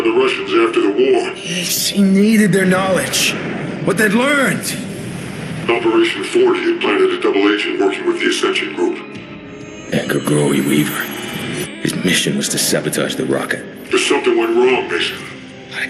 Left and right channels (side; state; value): both; identical; correlation 1.00